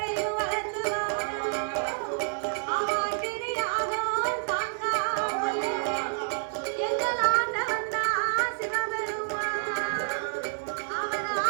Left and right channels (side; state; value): left; silent; 58 dB below the other